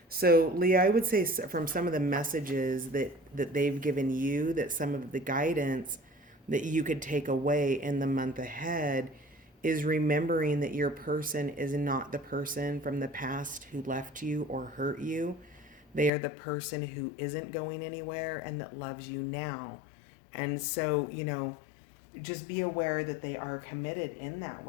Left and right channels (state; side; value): drops out; right; at 16.1 s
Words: So, Leah, I would say from some of the messages that they've given you, that some of the guidance that you could take away in the month ahead is remembering that your person is not the person from the past who left you or hurt you. They are the person who isn't going anywhere and that loves you now. And so, just be aware that they are committed in that